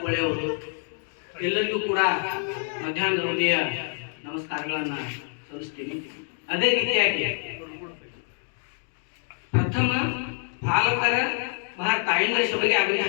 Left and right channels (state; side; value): silent; right; 61 dB below the other